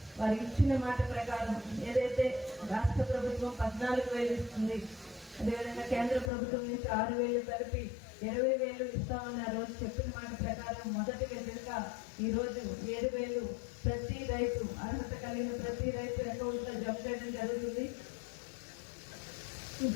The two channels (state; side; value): drops out; right; at 6.3 s